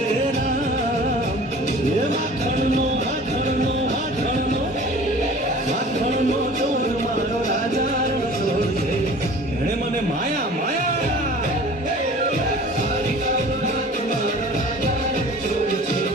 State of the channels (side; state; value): both; normal; correlation 0.45